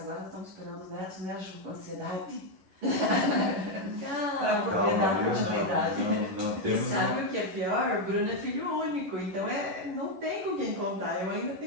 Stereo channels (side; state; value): left; late; 11 ms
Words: estamos esperando os netos, né, Ju, com ansiedade. Para poder dar continuidade. E sabe o que é pior? O Bruno é filho único, então não tem com quem contar. Eu ainda